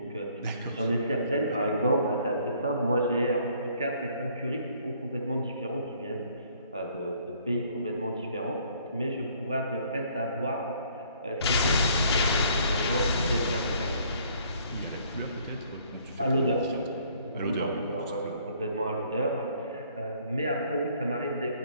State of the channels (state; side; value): inverted; both; correlation -0.62